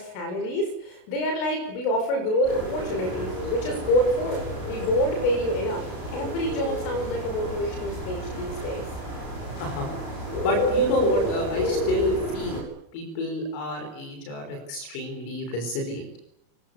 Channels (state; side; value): late; right; 32 ms